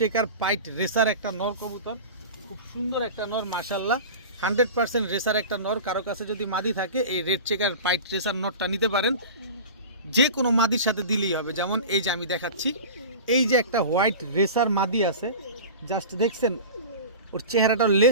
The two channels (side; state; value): both; inverted; correlation -0.33